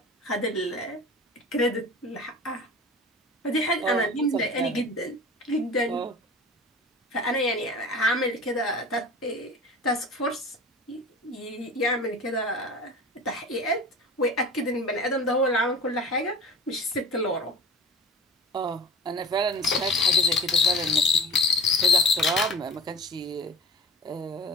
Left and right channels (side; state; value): both; normal; correlation 0.38